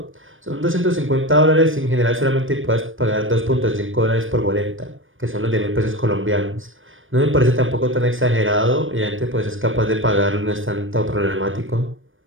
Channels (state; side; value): late; left; 0.58 ms